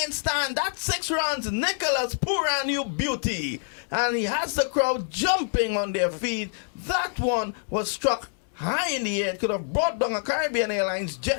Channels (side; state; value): right; silent; digital silence